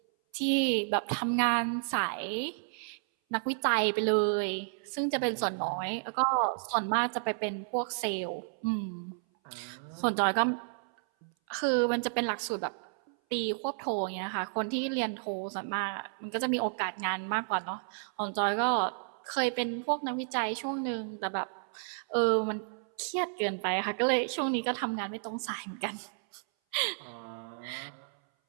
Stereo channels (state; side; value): silent; left; 57 dB below the other